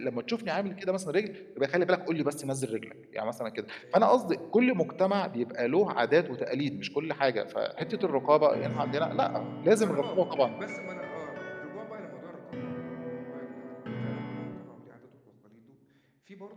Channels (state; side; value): identical; both; correlation 1.00